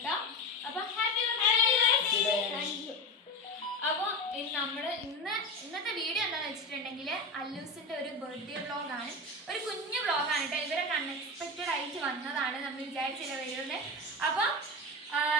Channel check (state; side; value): normal; both; correlation 0.23